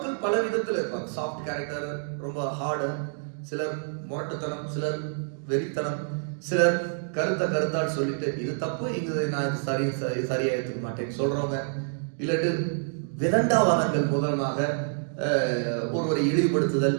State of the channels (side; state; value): left; silent; digital silence